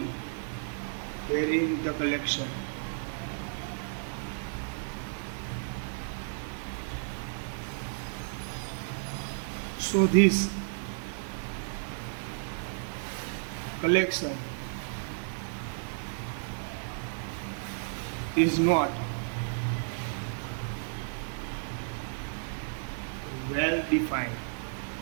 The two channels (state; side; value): silent; left; digital silence